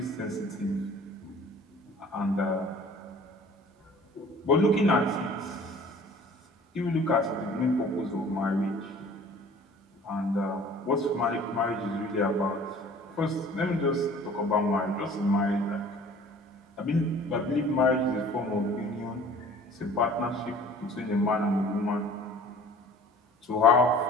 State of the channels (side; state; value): both; normal; correlation 0.48